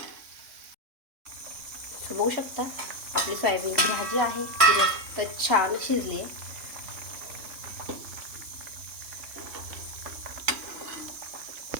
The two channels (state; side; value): late; left; 3.5 ms